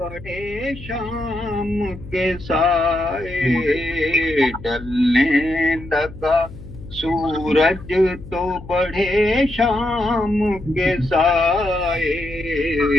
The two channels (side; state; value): left; noise; hum, 15 dB below the sound